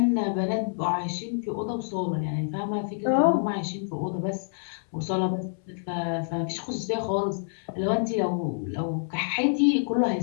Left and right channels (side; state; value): right; silent; 60 dB below the other